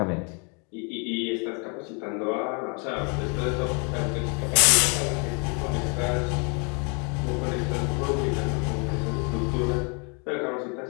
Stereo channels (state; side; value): quieter; right; 35.5 dB